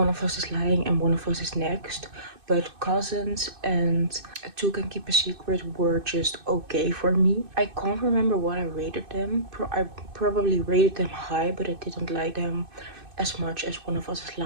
of Us is Lying and One of Us is Next, but Cousins and Two Can Keep a Secret were just okay for me. I can't remember what I rated them. I probably rated them high, but I didn't like them as much as One of Us is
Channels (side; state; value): left; late; 2.6 ms